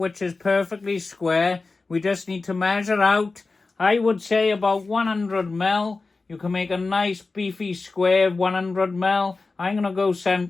is perfectly square, we just need to measure out, I would say about 100 mil. You can make a nice beefy square 100 mil. I'm going to go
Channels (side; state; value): right; quieter; 3.8 dB